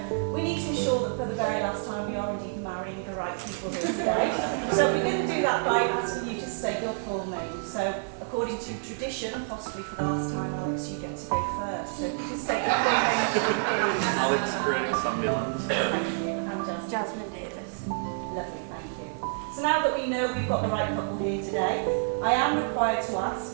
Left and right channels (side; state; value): left; silent; 59 dB below the other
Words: we need to ensure that for the very last time we are indeed marrying the right people here today. So we're going to do that by asking you to state your full name. So according to tradition, and possibly for the last time, Alex, you get to go first. So if you can state your full name, please. Alex Sandilands. Thank you. And Jasmine Davis. Lovely, thank you. So now that we know we've got the right couple here today, I am required to